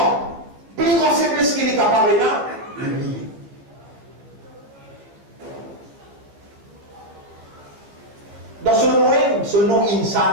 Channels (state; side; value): late; left; 14 ms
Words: plus grande faiblesse qu'il est capable de l'oublier. Dans ce nom